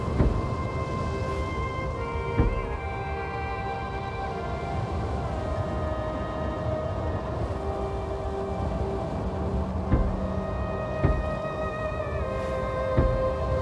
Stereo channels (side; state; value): both; identical; correlation 1.00